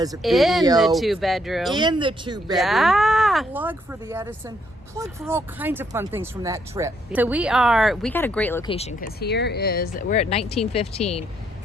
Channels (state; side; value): normal; both; correlation 0.73